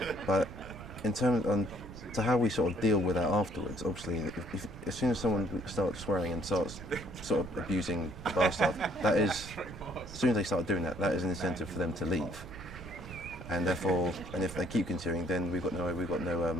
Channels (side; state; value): right; noise; rumble, 14 dB below the sound